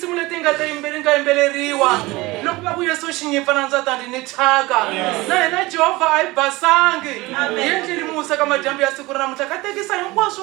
leti nga yimbeleriwa. Loko va ku Yesu xinyipa na ndzatani ni thaka na hina Jehovah ai basangi yendlini musa ka majambu ya siku ra namuntlha ka tekisa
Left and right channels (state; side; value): quieter; left; 21.2 dB